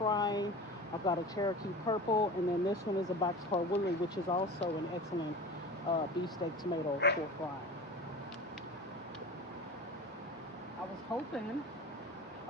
I've got a Cherokee purple, and then this one is a boxcar woolly, which is also an excellent beefsteak tomato for frying. I was hoping,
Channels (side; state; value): both; normal; correlation 0.34